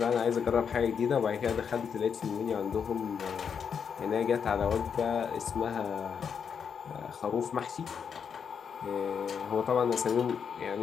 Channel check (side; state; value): right; quieter; 6.9 dB